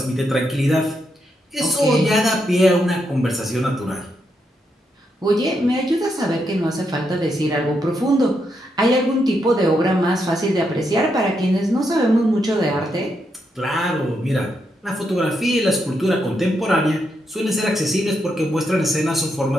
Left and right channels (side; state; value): both; normal; correlation 0.81